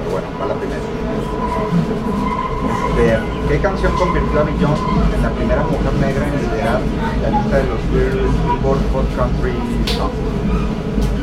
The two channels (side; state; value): both; identical; correlation 1.00